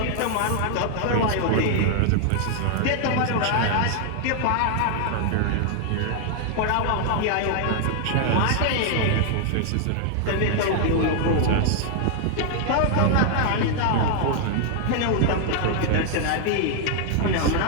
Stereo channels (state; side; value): different; both; correlation 0.00